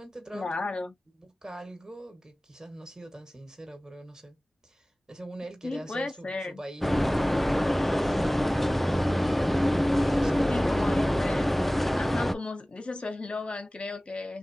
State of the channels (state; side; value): normal; both; correlation 0.98